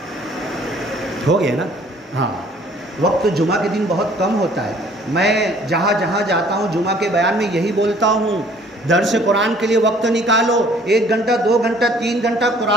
ہو گیا نا؟ ہاں، وقت جمعہ کے دن بہت کم ہوتا ہے۔ میں جہاں جہاں جاتا ہوں جمعہ کے بیان میں یہی بولتا ہوں، درس قرآن کے لیے وقت نکالو، 1 گھنٹہ 2 گھنٹہ 3 گھنٹہ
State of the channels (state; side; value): normal; both; correlation 0.57